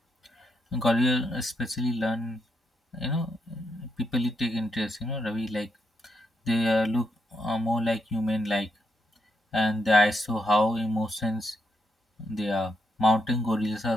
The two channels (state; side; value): normal; both; correlation 0.80